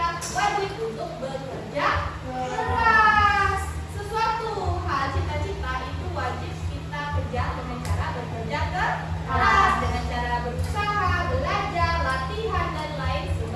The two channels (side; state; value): both; identical; correlation 1.00